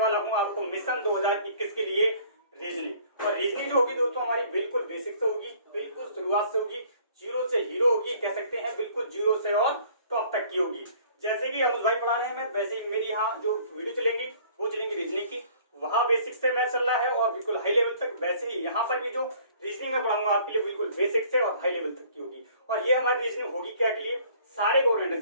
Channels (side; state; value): both; inverted; correlation -0.55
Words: हूं आपको मिशन 2021 के लिए रीजनिंग। और रीजनिंग जो होगी दोस्तों हमारी बिल्कुल बेसिक से होगी, बिल्कुल शुरुआत से होगी, जीरो से हीरो होगी कह सकते हैं, बिल्कुल जीरो से और टॉप तक की होगी। जैसे कि अनुज भाई पढ़ा रहे हैं मैथ, वैसे ही मेरी यहाँ जो वीडियो चलेंगी वो चलेंगी रीजनिंग की। वहाँ बेसिक से मैथ चल रहा है और बिल्कुल हाई लेवल तक, वैसे ही यहाँ पर भी जो रीजनिंग में पढ़ाऊंगा आपके लिए बिल्कुल बेसिक से और हाई लेवल तक की होगी। और ये हमारी रीजनिंग होगी क्या के लिए, सारे गवर्नमेंट,